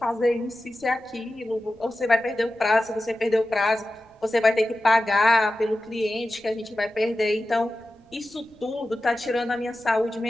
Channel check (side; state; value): right; noise; rumble, 30 dB below the sound